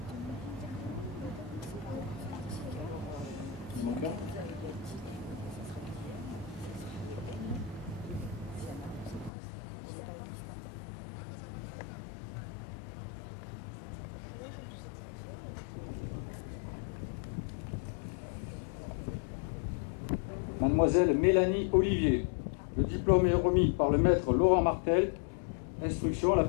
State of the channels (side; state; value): right; drops out; at 9.3 s